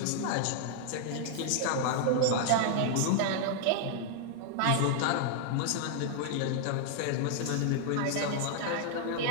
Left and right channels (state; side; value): different; both; correlation 0.00